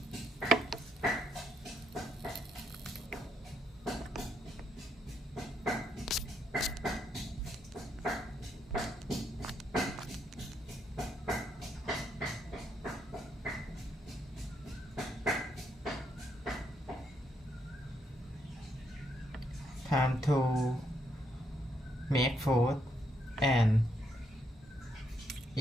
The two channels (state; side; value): normal; both; correlation 0.77